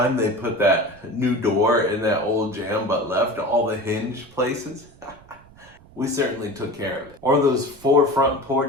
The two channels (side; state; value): right; noise; rumble, 25 dB below the sound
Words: they put that new door in that old jam but left all the hinge places. We certainly took care of it. Or those 4 front